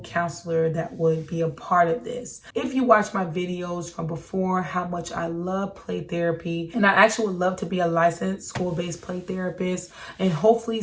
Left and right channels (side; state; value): both; identical; correlation 1.00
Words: counselor that would be a part of this. If you watch my videos from before, how much I love play therapy, and I actually would love to be a licensed school-based play therapist, and hopefully